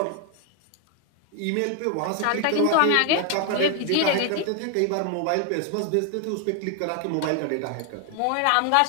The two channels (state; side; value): different; both; correlation 0.01